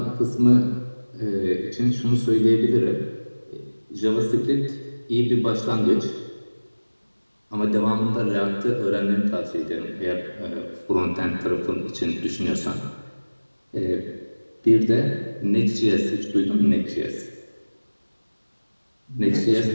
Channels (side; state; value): both; inverted; correlation -1.00